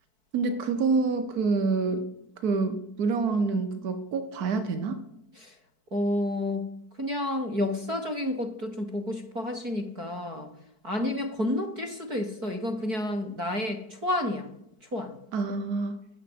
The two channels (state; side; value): late; left; 4.6 ms